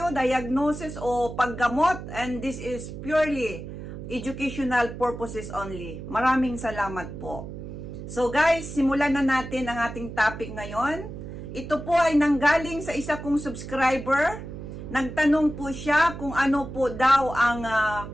diagnosis o paggamot, and this is purely educational purposes only. Maraming salamat po. So guys, simulan na natin ang ating topic ngayon. Ito po ay nanggaling sa isa kong subscriber. Nagtanong po siya kung ano po daw ang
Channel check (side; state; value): right; noise; hum, 10 dB below the sound